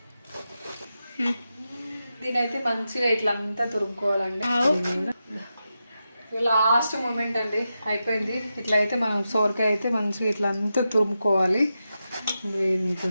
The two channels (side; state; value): both; inverted; correlation -0.89